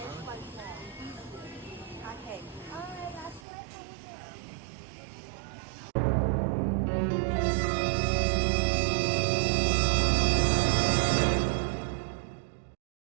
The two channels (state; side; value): drops out; left; at 3.5 s